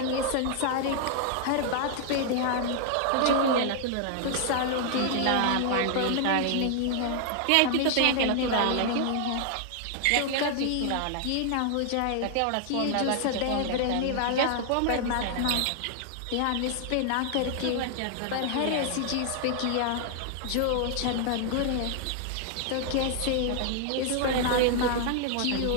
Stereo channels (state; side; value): different; both; correlation 0.00